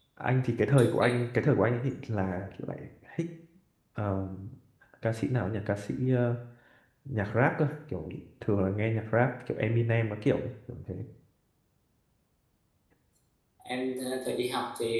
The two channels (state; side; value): identical; both; correlation 1.00